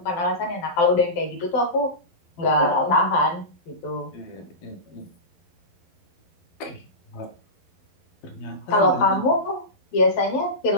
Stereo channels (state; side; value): late; right; 12 ms